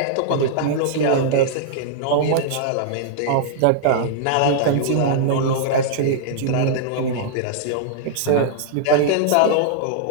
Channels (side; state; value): both; different; correlation -0.01